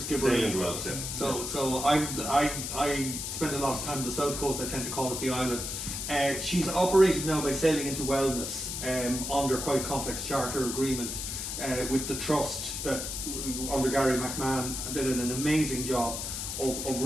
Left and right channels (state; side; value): noise; left; hiss, 4 dB below the sound